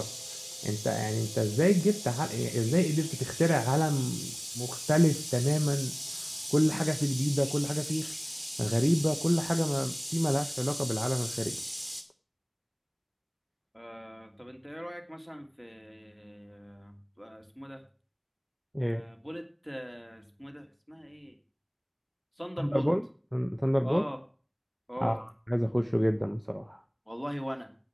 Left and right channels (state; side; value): identical; both; correlation 1.00